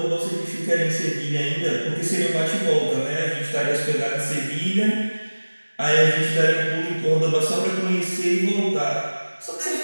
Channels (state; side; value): inverted; both; correlation -1.00